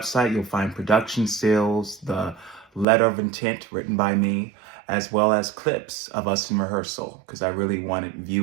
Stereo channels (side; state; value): left; drops out; at 2.9 s